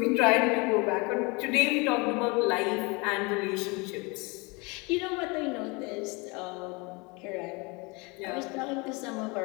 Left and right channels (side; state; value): right; quieter; 27.9 dB